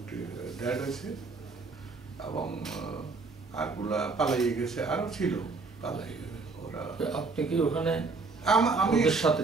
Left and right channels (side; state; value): left; quieter; 4.1 dB